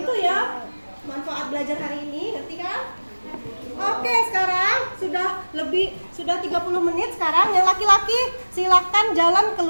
ya manfaat belajar hari ini, ngerti kan? Oke, sekarang sudah 30 menit. Sekarang yang laki-laki silakan jalan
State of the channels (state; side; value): inverted; both; correlation -1.00